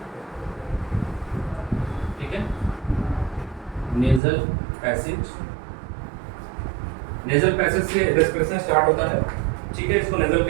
ठीक है, नेजल पैसेज। नेजल पैसेज से रेस्पिरेशन स्टार्ट होता है, ठीक है, इसको नेजल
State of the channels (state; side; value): drops out; left; at 4.2 s